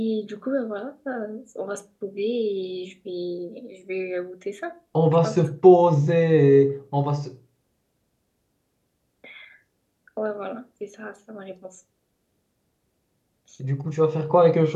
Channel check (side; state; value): both; identical; correlation 1.00